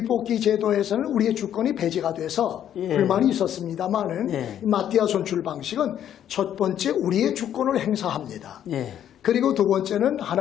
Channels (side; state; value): right; quieter; 10.3 dB